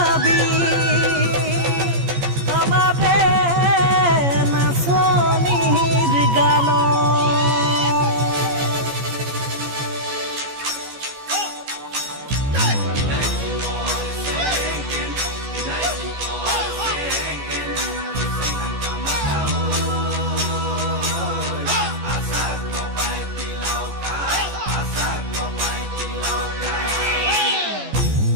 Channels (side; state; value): left; late; 14 ms